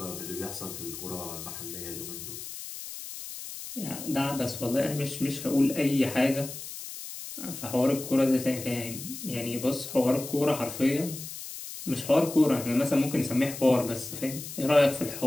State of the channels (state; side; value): noise; left; hiss, 10 dB below the sound